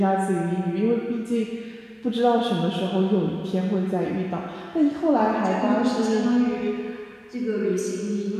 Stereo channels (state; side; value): identical; both; correlation 1.00